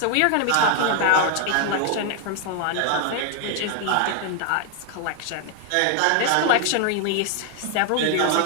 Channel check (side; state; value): both; different; correlation 0.00